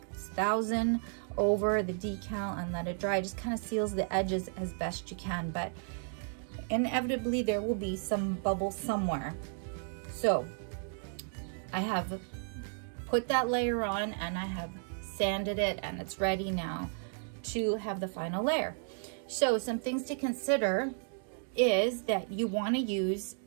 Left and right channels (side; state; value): left; silent; 55 dB below the other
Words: over the decal and let it dry. It just kind of seals the edges as best you can, but inevitably there will be some bubbles somewhere. So I have put that layer on and I have sanded it, and it's ready now to have the final layer. So some things to consider is that you want to use